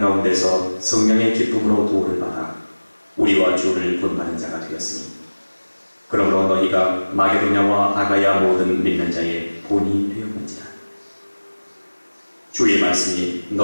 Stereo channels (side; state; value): both; inverted; correlation -1.00